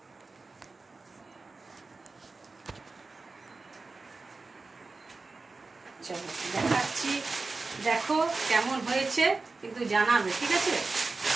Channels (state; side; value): quieter; left; 3.8 dB